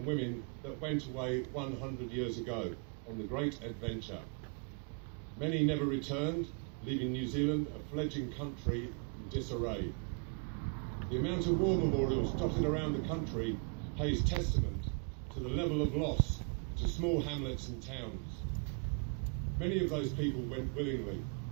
women that went away 100 years ago on the great adventure. Many never returned, leaving New Zealand a fledgling country in disarray. The amount of war memorials dotted around the country pays testament to the level of loss to small hamlets and towns. Many of those people went willingly.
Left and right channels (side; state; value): left; quieter; 34.8 dB